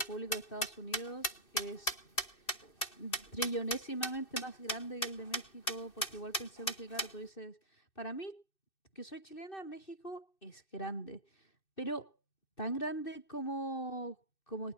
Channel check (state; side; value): late; right; 2.6 ms